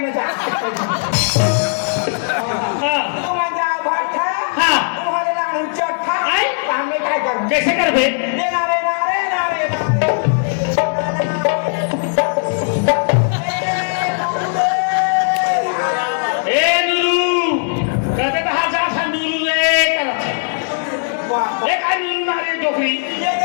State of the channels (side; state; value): right; silent; 67 dB below the other